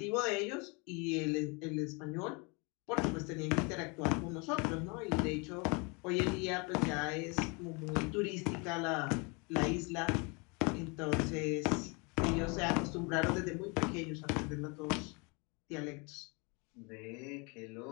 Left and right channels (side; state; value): right; quieter; 30.6 dB